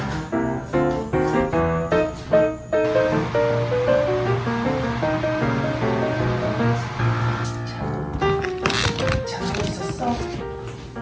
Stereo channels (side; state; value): both; identical; correlation 1.00